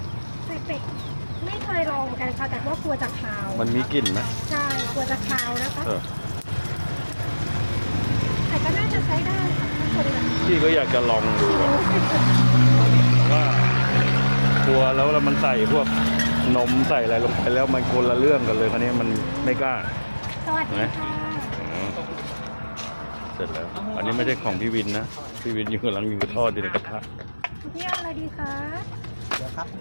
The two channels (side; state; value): both; inverted; correlation -1.00